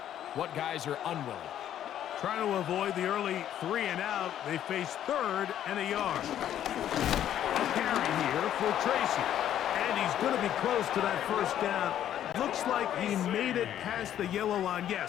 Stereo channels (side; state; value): right; quieter; 10.9 dB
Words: what guys are unwilling. Trying to avoid the early 3 and out, they face 3rd and a yard. A carry here for Tracy. And he's going to be close to that first down. Looks like he made it past the yellow line.